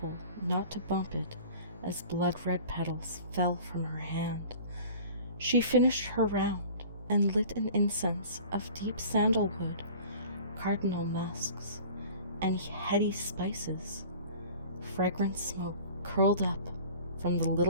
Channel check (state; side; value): inverted; both; correlation -0.44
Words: not to bump it as blood-red petals fell from her hand. She finished her round and lit an incense of deep sandalwood, cardinal musks, and heady spices. Fragrant smoke curled up from the